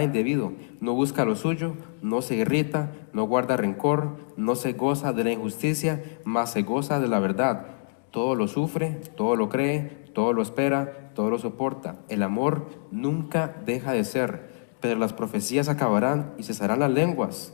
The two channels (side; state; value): right; silent; digital silence